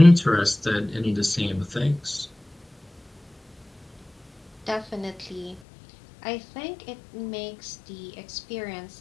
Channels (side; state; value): right; drops out; at 5.6 s